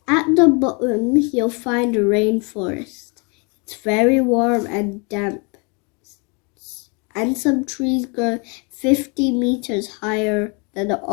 At the bottom you'll find a rainforest. It's very warm and damp, and some trees grow 50 meters higher than the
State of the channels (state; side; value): quieter; right; 32.6 dB